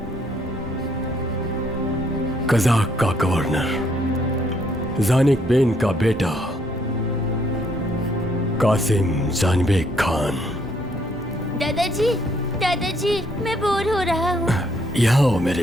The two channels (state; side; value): normal; both; correlation 0.69